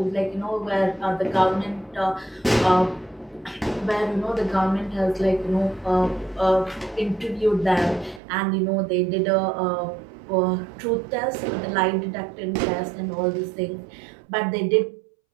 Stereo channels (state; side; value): drops out; left; at 8.2 s